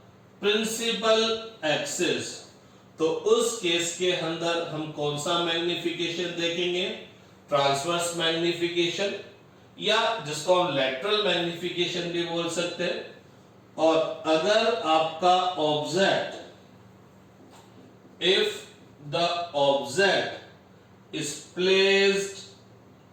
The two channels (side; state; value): both; identical; correlation 1.00